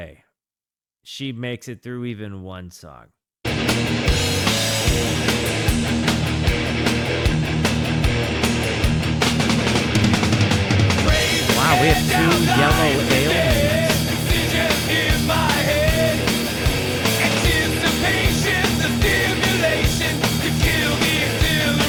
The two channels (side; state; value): both; identical; correlation 1.00